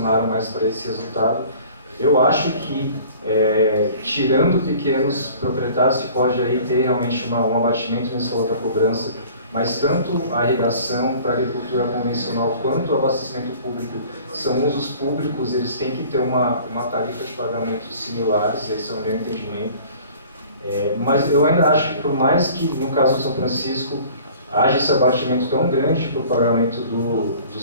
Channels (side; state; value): both; inverted; correlation -0.48